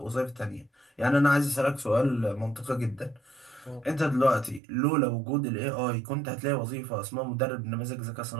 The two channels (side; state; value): left; drops out; at 4.6 s